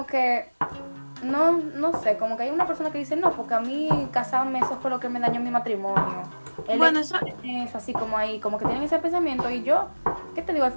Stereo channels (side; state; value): both; inverted; correlation -1.00